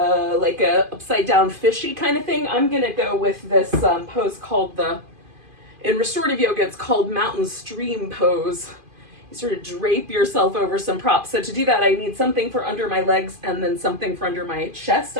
a upside down fishy kind of thing. I'm going to go with this pose called in restorative yoga, it's called mountain stream pose. You sort of drape yourself over some props. So to do that, I need something for under my legs and then something for under my chest,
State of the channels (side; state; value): left; late; 2.5 ms